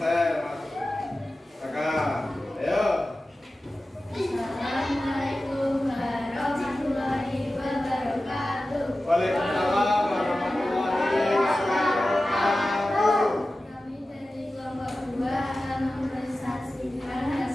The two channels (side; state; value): both; normal; correlation 0.95